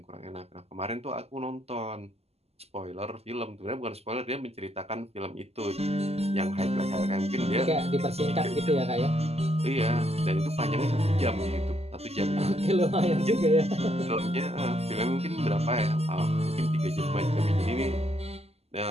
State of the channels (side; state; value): left; late; 0.30 ms